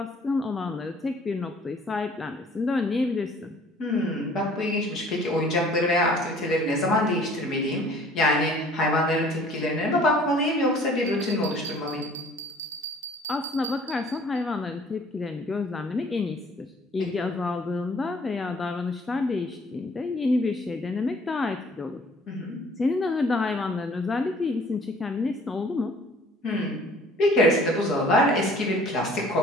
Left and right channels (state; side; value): normal; both; correlation 0.54